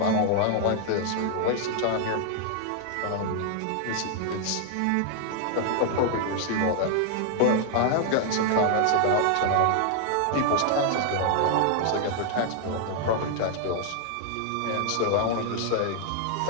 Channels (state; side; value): different; both; correlation 0.00